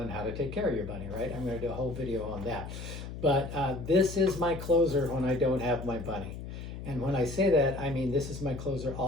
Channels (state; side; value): noise; left; hum, 9 dB below the sound